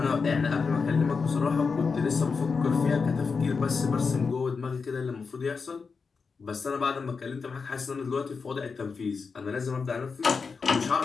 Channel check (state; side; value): quieter; right; 5.0 dB